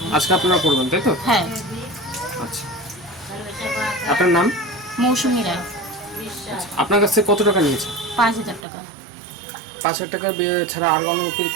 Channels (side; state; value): left; drops out; at 8.7 s